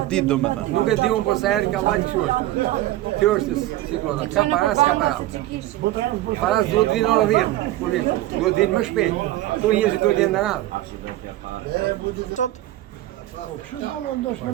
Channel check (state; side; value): quieter; left; 15.4 dB